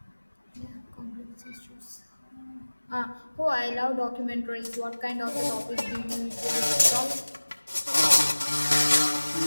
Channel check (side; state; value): both; inverted; correlation -1.00